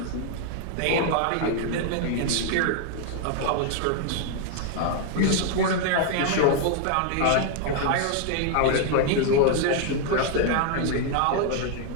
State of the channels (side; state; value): both; different; correlation 0.00